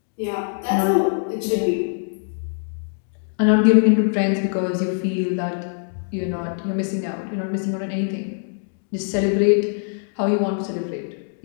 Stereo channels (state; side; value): silent; right; digital silence